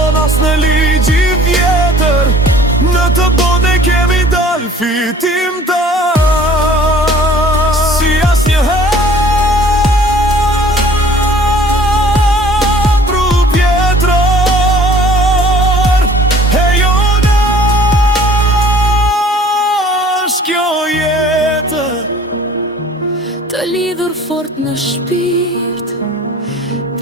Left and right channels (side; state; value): both; normal; correlation 0.51